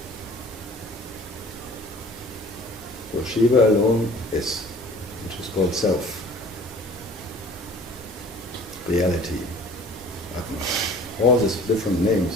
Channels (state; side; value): normal; both; correlation 0.48